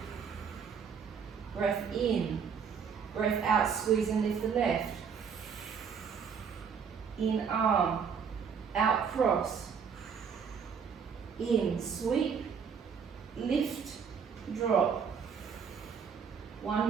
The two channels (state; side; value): quieter; left; 6.6 dB